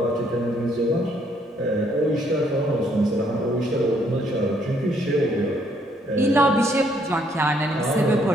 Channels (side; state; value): both; normal; correlation 0.68